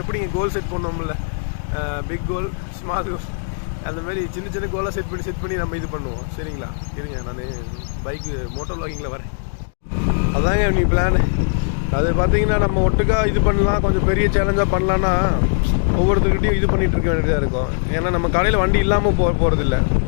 எப்படிங்க கோல் செட் பண்ணோம்ல, பிக் கோல், ஸ்மால் கோல், அந்த மாதிரி சின்ன சின்ன கோலாக செட் பண்ணி நம்ம இது பண்ணுவோம். சரிங்களா? இருங்க, நான் பைக்கு மோட்டர் வ்ளாகிங்கில் வரேன். அதாங்க நீ பிளான். அது பார்த்தீங்கன்னா நம்ம ஒட்டுக்கா இது பண்ணலாம், கொஞ்சம் பெரிய சேலஞ்சாக பண்ணலான்னா ஒவ்வொருத்தருக்கிட்டையும் இது பண்ணிகிட்டு இருக்க வேண்டியதாக இருக்கும். ஏன்னா நம்ம கடையில் வண்டி இல்லாமல் போகிறதில்ல.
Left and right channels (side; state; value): right; silent; digital silence